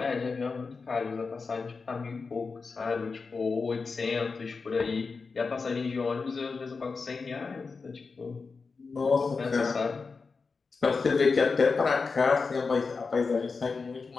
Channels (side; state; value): right; quieter; 4.6 dB